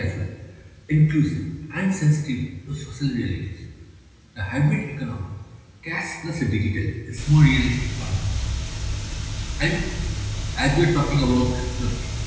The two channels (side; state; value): both; identical; correlation 1.00